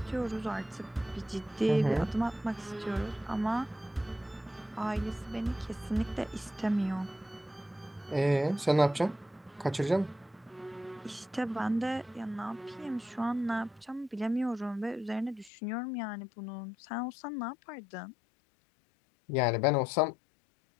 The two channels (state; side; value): drops out; right; at 15.5 s